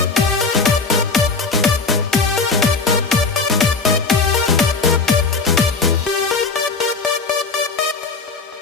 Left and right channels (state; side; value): quieter; right; 4.4 dB